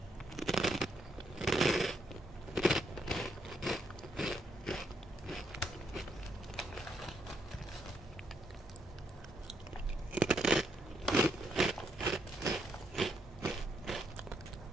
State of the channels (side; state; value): both; normal; correlation 0.77